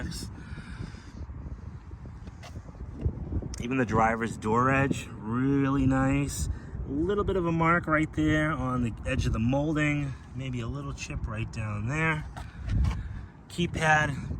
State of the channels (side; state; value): both; identical; correlation 1.00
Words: Even the driver's door edge, really nice. A little bit of a mark right there on the edge of the molding. Maybe a little chip right down there. Keypad,